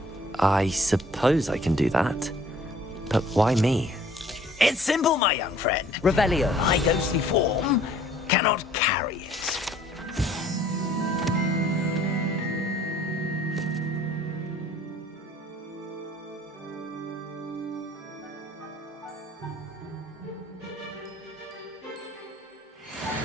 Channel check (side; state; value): both; normal; correlation 0.56